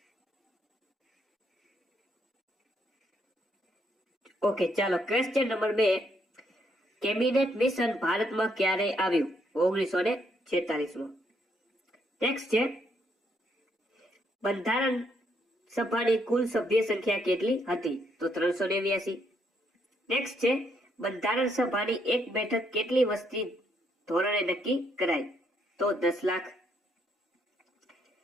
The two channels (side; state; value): both; normal; correlation 0.73